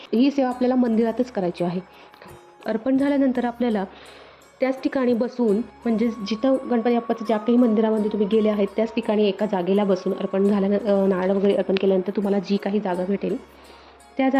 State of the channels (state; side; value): identical; both; correlation 1.00